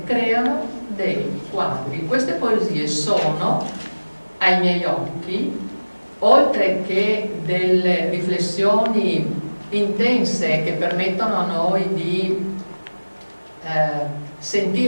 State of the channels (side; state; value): both; inverted; correlation -1.00